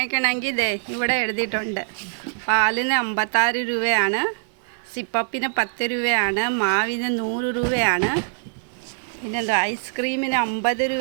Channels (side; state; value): left; silent; 63 dB below the other